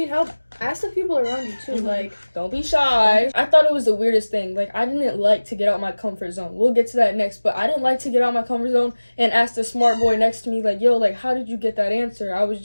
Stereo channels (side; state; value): both; inverted; correlation -1.00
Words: help, ask the people around you too. Like, don't be shy. I thought it was the weirdest thing. Like, I didn't like to get out my comfort zone. We'll get to that next, but I didn't like to get out my comfort zone and ask the smart boy next to me, like, yo, like, how did you get that answer? I was